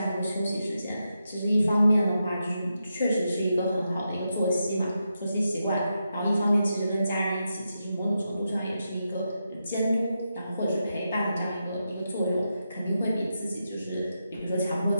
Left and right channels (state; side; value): inverted; both; correlation -0.86